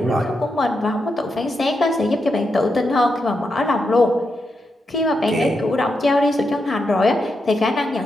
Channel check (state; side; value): normal; both; correlation 0.85